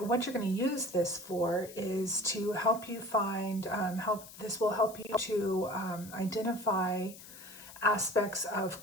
you're going to use this for is to help you find, this will help you to identify aspects of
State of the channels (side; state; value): left; noise; hiss, 17 dB below the sound